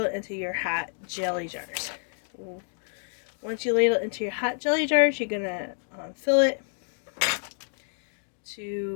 it into your hot jelly jars. Once you ladle it into your hot jelly jars, you're going to fill it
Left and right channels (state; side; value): silent; right; digital silence